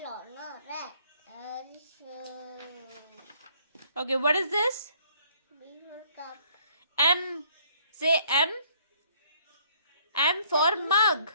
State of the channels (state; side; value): inverted; both; correlation -0.62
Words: No, red. Okay. What is this? B for cup. M. Say M. M for mug.